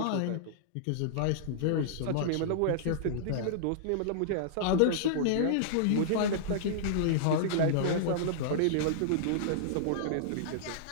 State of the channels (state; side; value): different; both; correlation -0.02